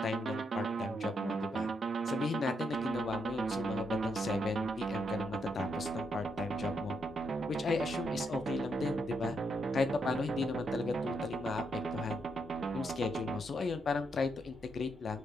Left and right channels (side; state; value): both; normal; correlation 0.79